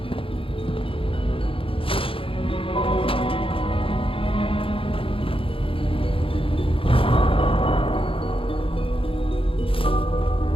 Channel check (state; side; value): late; right; 0.26 ms